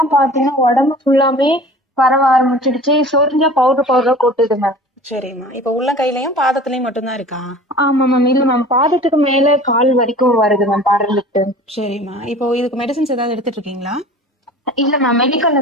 பாத்தீங்கன்னா உடம்பு ஃபுல்லாமே பரவ ஆரம்பிச்சிடுச்சு. சொரிஞ்சா பவுடர் பவுடரா கொட்டுது மேம். சரிம்மா. இப்போ உள்ளங்கையிலயும் பாதத்துலயும் மட்டும்தான் இருக்கா? ஆமா மேம். இல்ல மேம், பாதத்துக்கு மேல கால் வரைக்கும் வருது மேம் படர்ந்துட்டு. சரிம்மா. இப்போ இதுக்கு மெடிசின்ஸ் ஏதாவது எடுத்துட்டு இருக்கீங்களா? இல்ல மேம், மெடிக்கல்ல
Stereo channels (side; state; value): both; normal; correlation 0.42